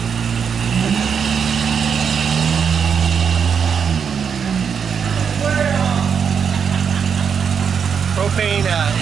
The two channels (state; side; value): quieter; left; 6.8 dB